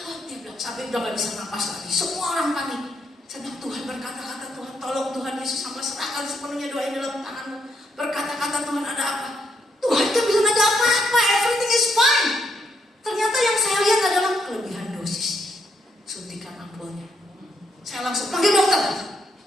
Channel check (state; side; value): normal; both; correlation 0.75